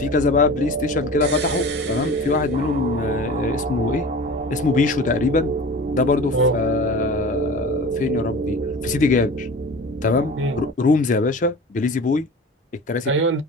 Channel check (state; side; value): normal; both; correlation 0.37